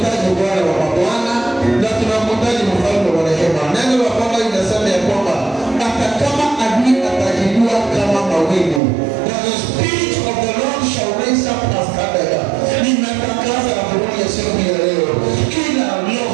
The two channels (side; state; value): left; drops out; at 8.8 s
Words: Bwana wa mabwana na tunamhitaji mfalme wa rehema. Neno la Bwana linasema ya kwamba hata kama adui atajinua kama mawingu, the Spirit of the Lord shall raise up a standard. Ninatangaza habari ya siku ya leo, kila